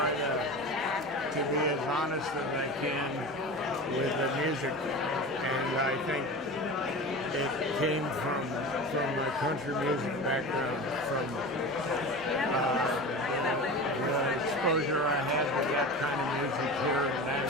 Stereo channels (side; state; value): both; normal; correlation 0.31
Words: to be as honest as I can with the music, and I think it came from my country music background, from the exposure I had to that kind of music here in